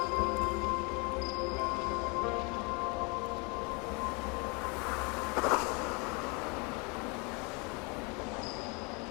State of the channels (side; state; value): right; quieter; 30.7 dB